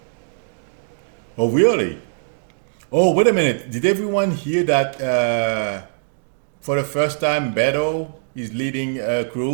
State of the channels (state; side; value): silent; left; digital silence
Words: Oh, really? Oh, wait a minute. Did everyone hear that for the first time Beto is leading